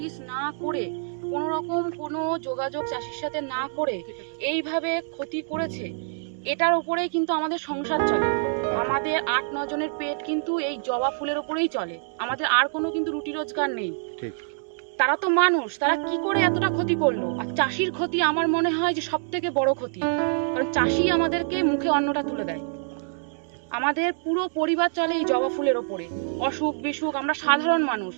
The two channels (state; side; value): silent; left; digital silence